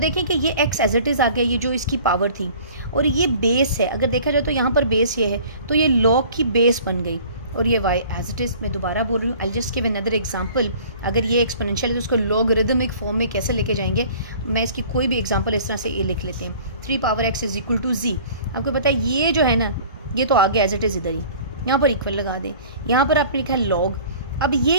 कि ये x एज इट इज़ आ गया, ये जो इसकी पावर थी, और ये बेस है। अगर देखा जाए तो यहाँ पर बेस ये है, तो ये लॉग की बेस बन गई, और ये y एज इट इज़। मैं दोबारा बोल रही हूँ, I just give another example. अगर ये एक्सपोनेंशियल है तो उसको लॉगरिदमिक फॉर्म में कैसे लेके जाएंगे, मैं इसकी कोई भी एग्जांपल इस तरह से ये लिख लेते हैं। 3 power x is equal to z। आपको पता है ये जो है ना, ये तो आ गया एज इट इज़ इधर ही, यहाँ पर इक्वल लगा दें। यहाँ पर आपने लिखा है लॉग, अब ये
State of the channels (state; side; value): inverted; both; correlation -0.48